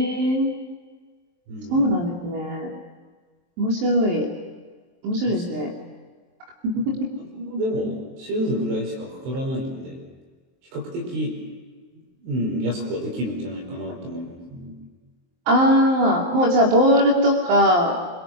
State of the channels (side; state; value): left; late; 23 ms